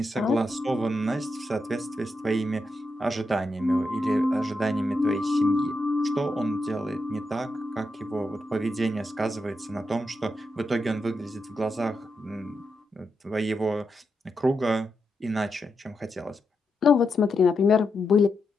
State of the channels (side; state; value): both; normal; correlation 0.85